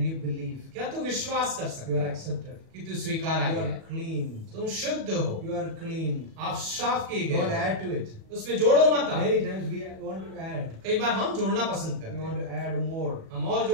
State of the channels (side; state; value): left; late; 37 ms